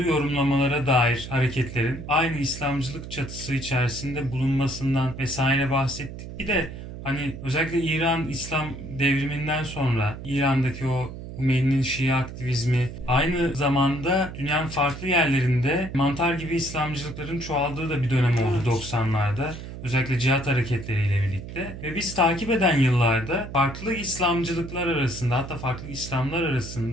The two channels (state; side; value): noise; right; hum, 11 dB below the sound